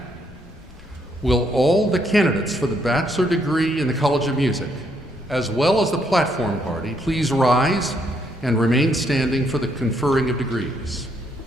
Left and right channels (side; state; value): both; normal; correlation 0.73